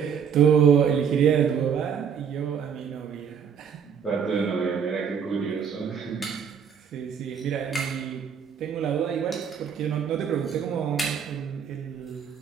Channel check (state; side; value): quieter; left; 7.4 dB